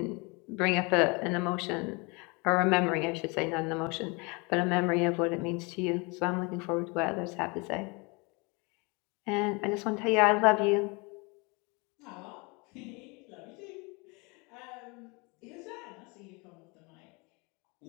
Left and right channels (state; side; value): quieter; right; 29.1 dB